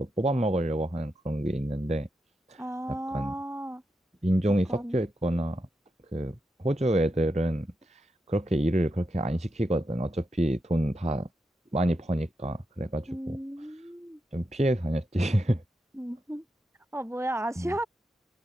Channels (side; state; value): both; normal; correlation 0.86